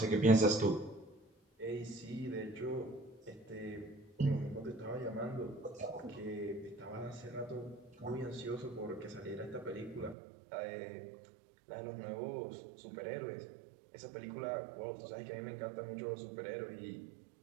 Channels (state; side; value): drops out; left; at 10.2 s